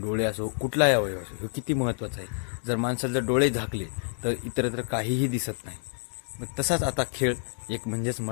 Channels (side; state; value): right; silent; 57 dB below the other